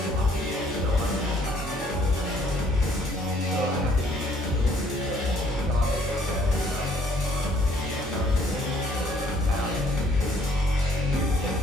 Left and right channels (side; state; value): both; normal; correlation 0.63